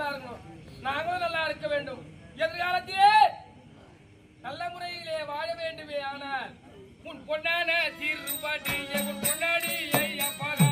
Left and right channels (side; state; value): both; identical; correlation 1.00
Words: இருக்கணும், நாங்களும் நல்லா இருக்க வேண்டும். எதிர்காலத்திலே நல்ல முறையிலே வாழ வேண்டுமே. ஆனால் உன் பொன்னான தீர்ப்பாட்டி உன் பொன்னாடி